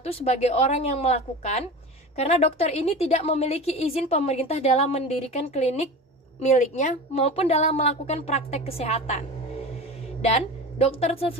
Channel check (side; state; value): both; normal; correlation 0.31